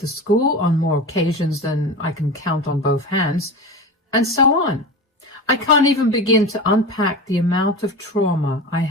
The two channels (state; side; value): normal; both; correlation 0.28